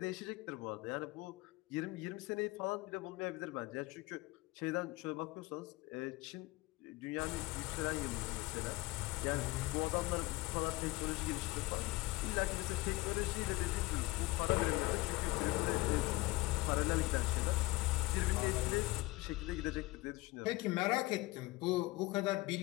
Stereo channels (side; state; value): right; quieter; 21.1 dB